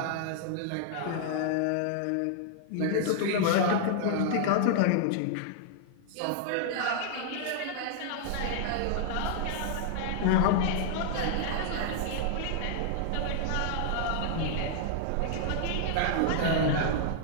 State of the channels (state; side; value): different; both; correlation -0.01